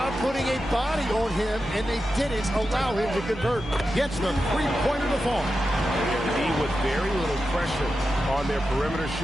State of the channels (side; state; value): both; normal; correlation 0.90